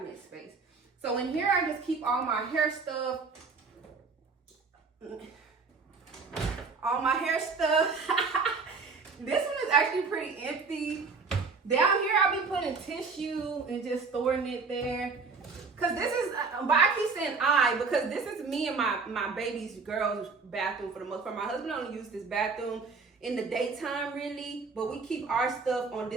space. So in here, I just keep all my hair stuff. This one is actually pretty empty. Down here, I'll be putting tissue and just storing it there. Cause this is, but I keep saying because this is me and my baby's girl's bathroom for the most part. My husband only uses this bathroom in the daytime really, but we keep our stuff on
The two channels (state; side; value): quieter; left; 4.6 dB